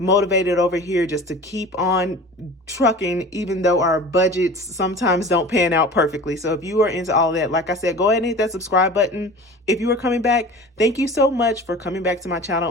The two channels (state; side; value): normal; both; correlation 0.39